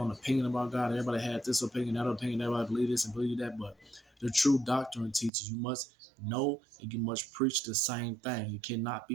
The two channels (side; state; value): left; drops out; at 5.3 s